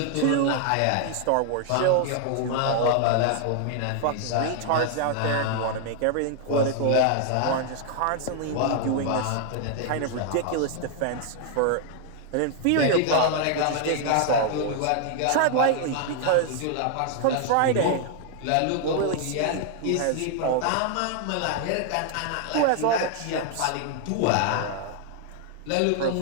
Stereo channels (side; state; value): both; different; correlation 0.00